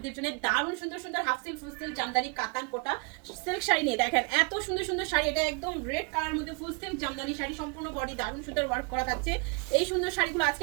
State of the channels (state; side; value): quieter; left; 32.1 dB